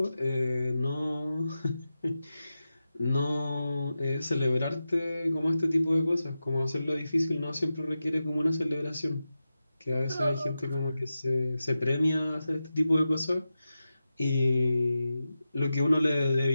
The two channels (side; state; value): both; inverted; correlation -0.92